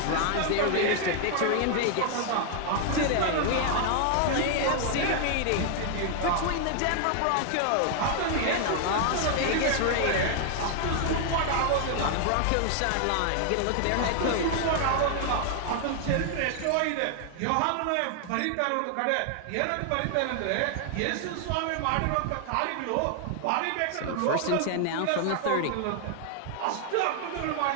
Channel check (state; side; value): different; both; correlation 0.00